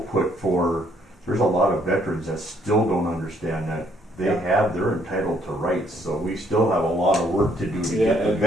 for, there's a lot of veterans that still don't understand that they're entitled to rights, so we still have a lot of work to do to get the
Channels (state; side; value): normal; both; correlation 0.67